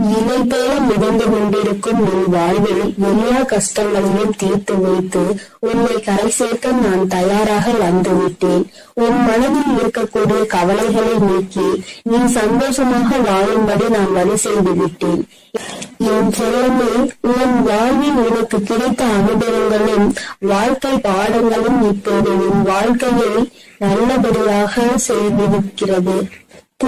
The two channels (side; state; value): both; identical; correlation 1.00